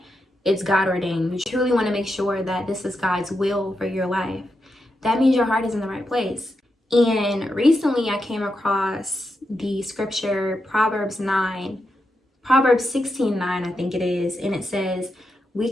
it's God ordained. You truly want to make sure that this is God's will for your life. That means your heart is in the right place. And recently I came across the scripture Proverbs 16:9, I think it is, and it says, we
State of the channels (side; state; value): both; normal; correlation 0.86